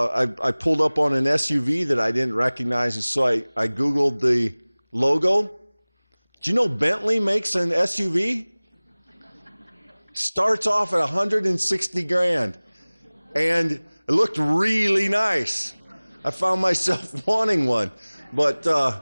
pulled up on an SUV that I didn't recognize, and so I Googled the logo. Do you know Bentley makes an SUV? Starts off at $160,000, and it looked really nice. I found myself wanting one, but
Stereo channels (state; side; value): inverted; both; correlation -1.00